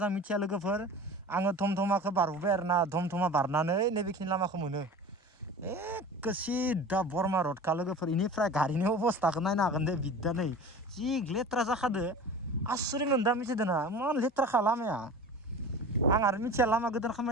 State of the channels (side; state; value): both; normal; correlation 0.37